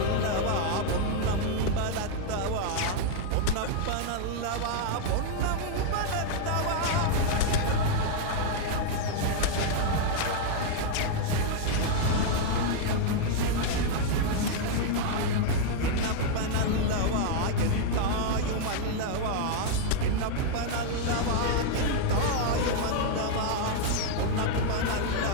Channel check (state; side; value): different; both; correlation 0.00